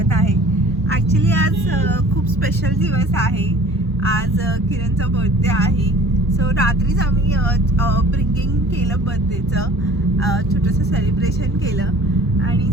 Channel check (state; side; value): normal; both; correlation 0.47